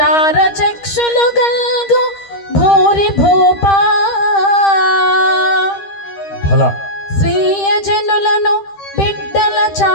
గల్గు భూరి భూపా. స్వీయ జనులను బిడ్డల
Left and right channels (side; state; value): right; late; 13 ms